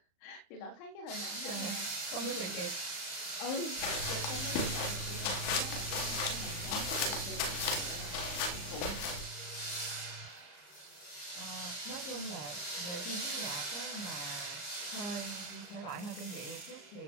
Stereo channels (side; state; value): right; late; 34 ms